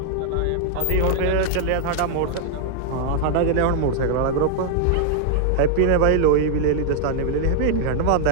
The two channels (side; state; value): both; different; correlation 0.00